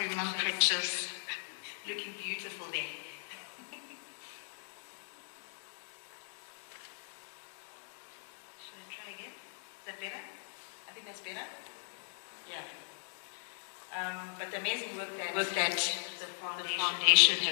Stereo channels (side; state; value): right; silent; digital silence